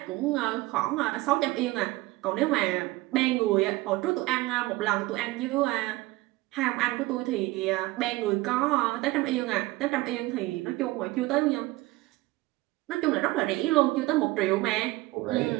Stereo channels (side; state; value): left; quieter; 19.8 dB